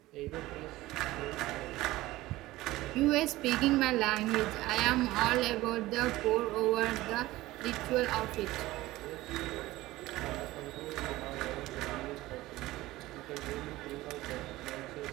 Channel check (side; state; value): left; quieter; 17.7 dB